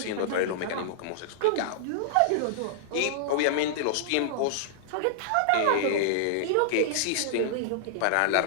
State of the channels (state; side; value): different; both; correlation -0.01